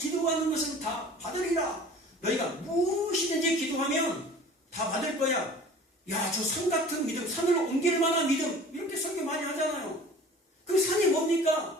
것은 다 받으리라. 너희가 무엇이든지 기도하면 다 받을 거야. 야, 저 산 같은 믿음, 산으로 옮길 만한 믿음, 이렇게 설교 많이 하잖아요. 그 산이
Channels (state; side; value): normal; both; correlation 0.44